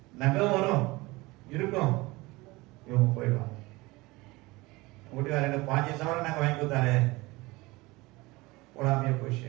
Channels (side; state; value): left; quieter; 22.0 dB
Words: நகை வரும் இருக்கும், இவங்க போயிடுவாங்க. வீட்டுக்கார எனக்கு 5 சவரம் நாங்கள் வாங்கி கொடுத்தாரு, போடாமையே